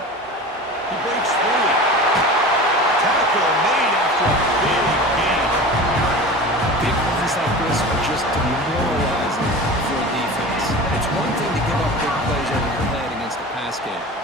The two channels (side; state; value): both; normal; correlation 0.34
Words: He breaks free. Tackle made after a big game. Big runs like this are just demoralizing for a defense. It's one thing to give up big plays over your head against a pass game.